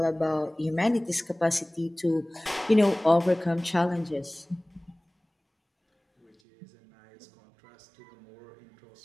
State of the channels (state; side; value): drops out; left; at 6.3 s